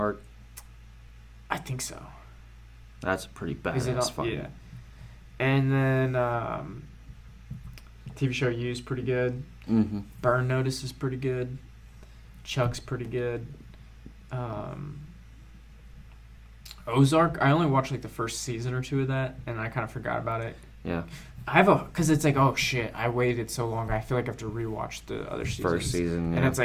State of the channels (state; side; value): identical; both; correlation 1.00